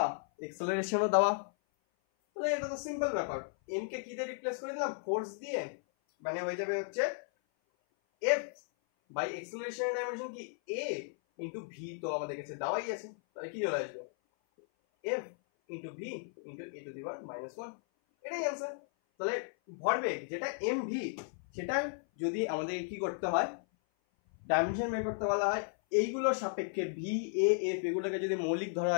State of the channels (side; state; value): right; silent; 54 dB below the other